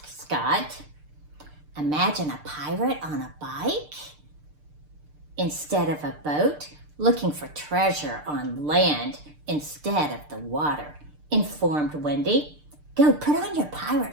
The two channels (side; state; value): left; late; 6.7 ms